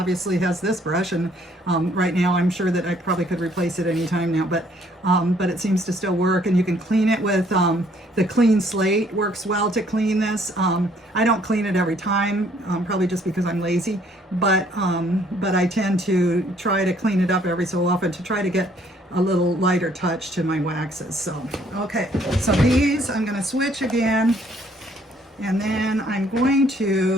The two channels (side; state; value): both; normal; correlation 0.63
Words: has this brush, and right now I'm sure that I probably could replace it anytime now, but it seems to still work. And you can clean it with the clean slate. Works well to clean this. I don't clean it every time, probably just because I'm lazy, but I tend to try to clean it up every so often to try to get a little lighter touch to my waxes. So, okay, so these I'm going to switch again, and then I'm going